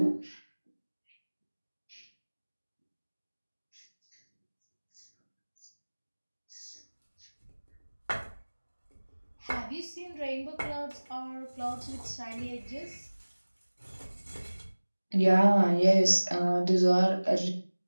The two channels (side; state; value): both; inverted; correlation -1.00